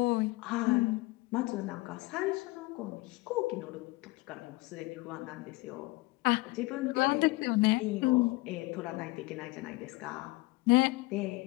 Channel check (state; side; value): quieter; right; 22.4 dB